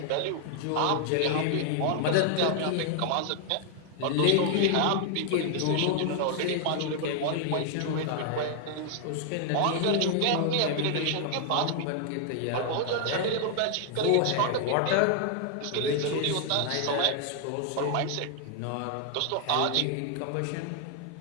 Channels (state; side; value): different; both; correlation 0.00